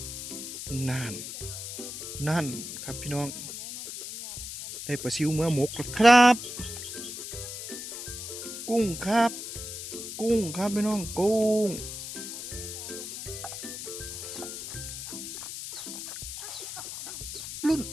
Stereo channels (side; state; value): left; noise; hiss, 8 dB below the sound